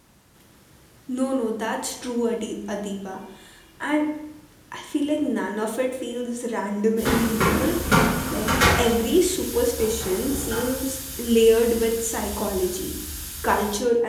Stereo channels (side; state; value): both; identical; correlation 1.00